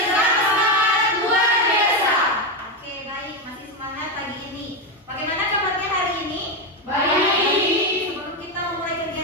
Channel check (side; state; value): both; normal; correlation 0.10